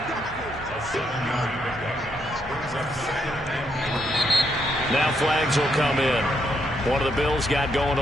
Now flags will come in. One of the Bills got going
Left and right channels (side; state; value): both; normal; correlation 0.76